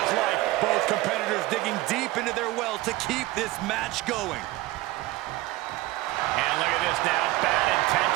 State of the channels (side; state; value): left; quieter; 18.4 dB